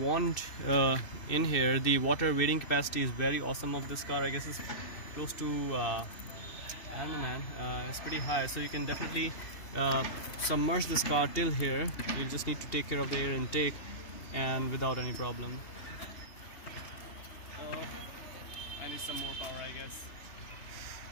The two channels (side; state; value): right; late; 2.6 ms